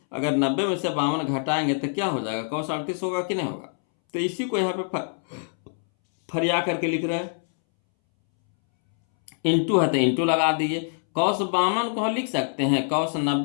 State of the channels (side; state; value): right; silent; 62 dB below the other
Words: अगर 90 में से 52 घटाएंगे तो क्या हो जाएगा, कॉस 38 होगा कि नहीं होगा। तो इसी को यहाँ पे फरिया करके लिख रहे हैं। इंटू है तो इंटू लगा दीजिए। कॉस 52 को लिख सकते हैं कॉस